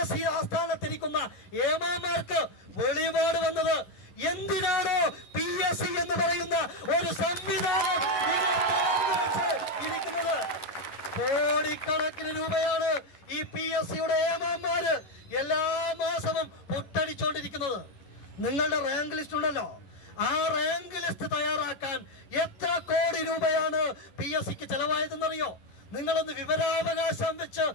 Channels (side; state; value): right; late; 11 ms